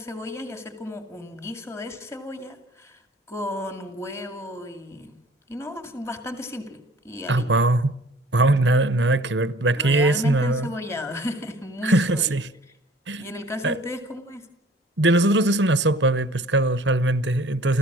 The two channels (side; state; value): both; normal; correlation 0.51